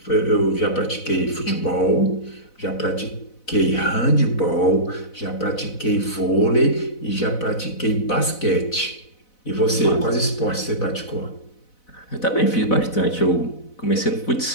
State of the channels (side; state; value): right; late; 4.0 ms